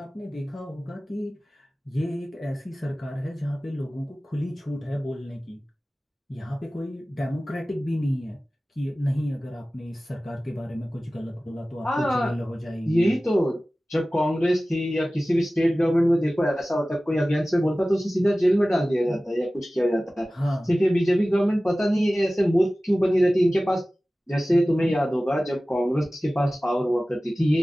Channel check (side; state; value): both; normal; correlation 0.97